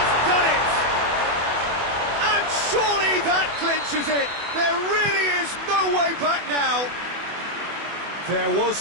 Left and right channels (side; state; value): left; late; 24 ms